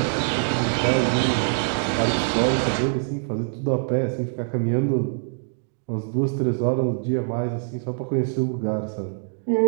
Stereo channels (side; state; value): left; silent; digital silence